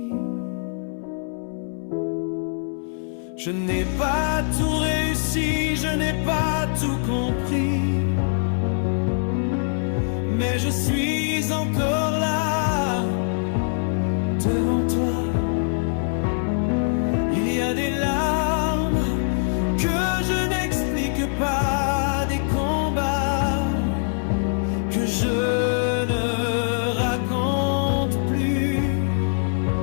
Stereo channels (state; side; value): silent; right; 61 dB below the other